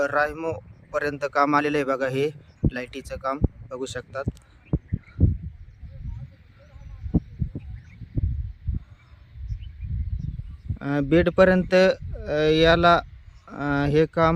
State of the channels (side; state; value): both; identical; correlation 1.00